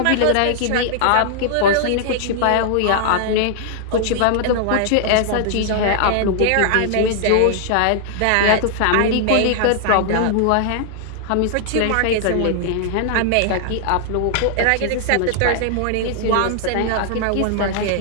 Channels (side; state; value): both; different; correlation -0.01